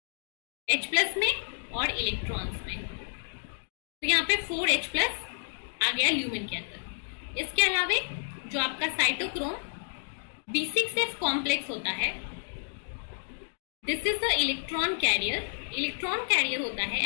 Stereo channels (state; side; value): silent; right; digital silence